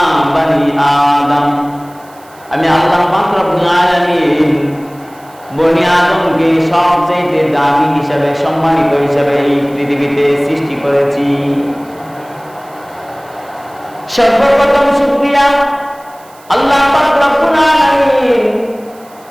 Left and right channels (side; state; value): right; noise; hiss, 27 dB below the sound